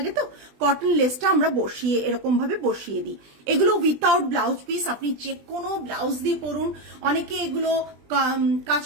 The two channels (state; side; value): late; left; 20 ms